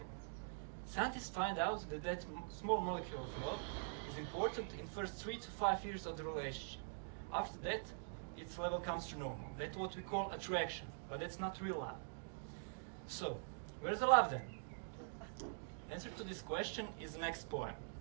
Scientists find out that that small molecule of love is important in the first 3 to 5 years of the relationship. After that, its level comes to normal. That's what we call attraction, but that's not real love. So, where's the love then? Answer to this question is the next poem.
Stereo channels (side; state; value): left; silent; digital silence